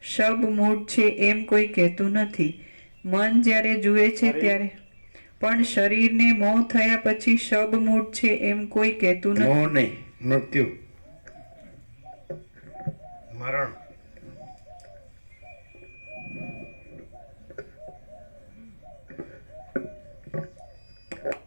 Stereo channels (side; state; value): both; inverted; correlation -1.00